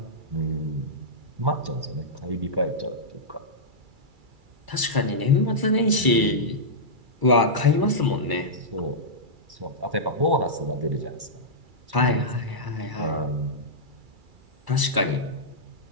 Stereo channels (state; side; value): late; left; 2.3 ms